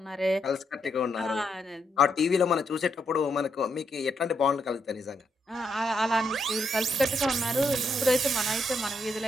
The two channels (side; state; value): both; normal; correlation 0.78